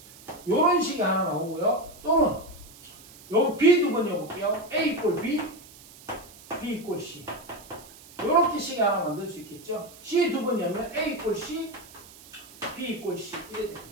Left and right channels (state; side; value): noise; right; hiss, 21 dB below the sound